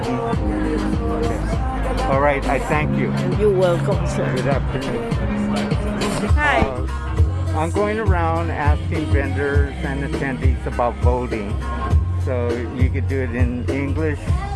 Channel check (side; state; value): both; identical; correlation 1.00